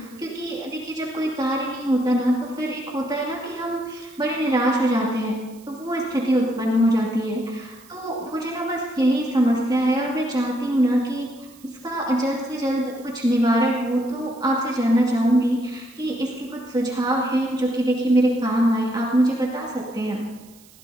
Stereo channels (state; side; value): noise; right; hiss, 25 dB below the sound